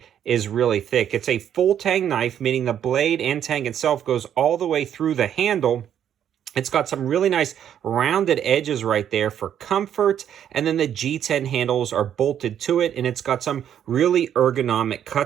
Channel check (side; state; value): left; quieter; 9.7 dB